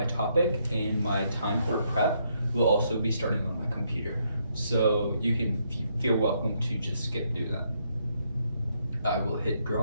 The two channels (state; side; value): inverted; both; correlation -0.75